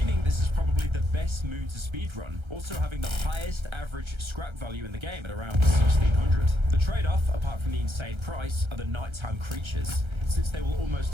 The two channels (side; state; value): left; late; 1.3 ms